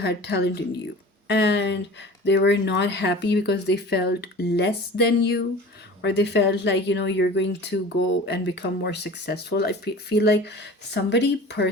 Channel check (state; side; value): normal; both; correlation 0.40